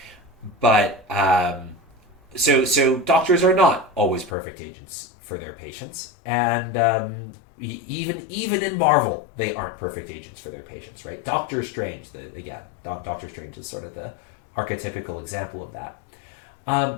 So doctors are not always perfect agents for their patients, and even in Marvel, they aren't perfect agents for their patients, right? Doctor Strange, Doctor Strange is sort of the archetypical example of that.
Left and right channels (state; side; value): drops out; right; at 4.3 s